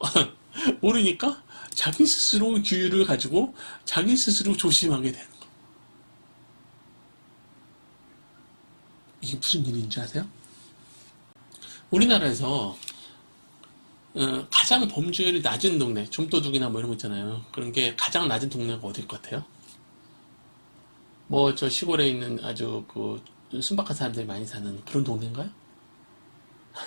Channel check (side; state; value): both; inverted; correlation -1.00